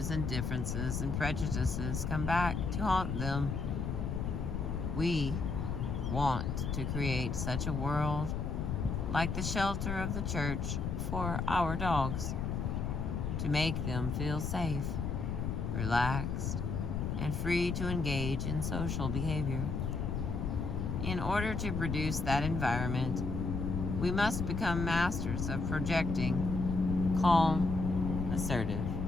and differences and prejudices come back to haunt them. We want to create such a world like the shelter of the church for our dogs, to make them feel safe, relaxed, and free to engage in social behavior. In order to produce that environment, we must become masters of projecting calm, assertive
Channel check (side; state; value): left; noise; rumble, 2 dB below the sound